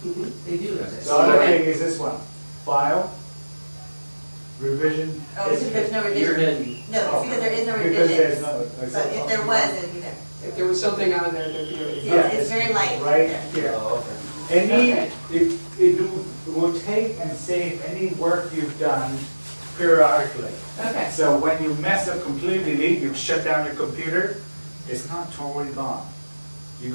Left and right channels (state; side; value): inverted; both; correlation -1.00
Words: They do exist. the other Okay. thing is this one, file, revision Oh, because history. there's no You're revision. hidden. No, it's because there is no Because revision. there's no. But if there was, it'd be there. If there was something on there, there'd be a. Yeah, It's very light. Right here. Oh, okay. Any, Okay. it will take and save any work you've done periodically. Okay. So when you mess up completely, you shut down your computer, it's not totally gone. You